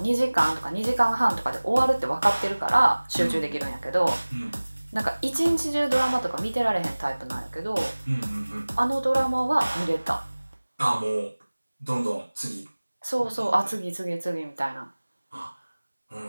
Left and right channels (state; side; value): inverted; both; correlation -1.00